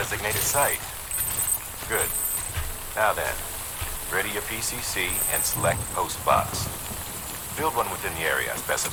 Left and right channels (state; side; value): identical; both; correlation 1.00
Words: site. Good. Now then, ready your PCC and select post box. Build one within the area